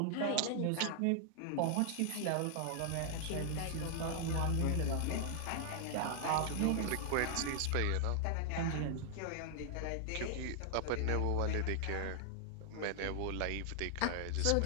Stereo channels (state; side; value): different; both; correlation -0.01